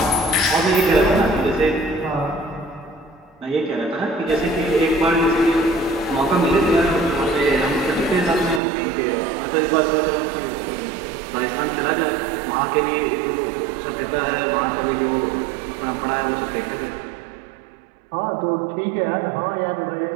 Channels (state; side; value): drops out; left; at 8.6 s